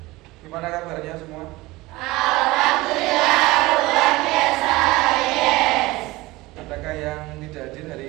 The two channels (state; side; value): quieter; left; 20.4 dB